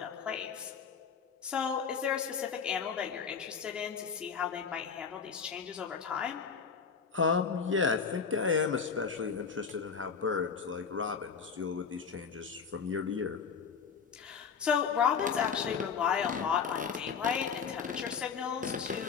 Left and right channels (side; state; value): right; quieter; 6.2 dB